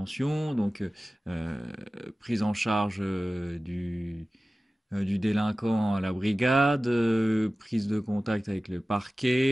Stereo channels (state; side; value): normal; both; correlation 0.96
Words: donc prise en charge du délinquant à la brigade, prise de contact avec le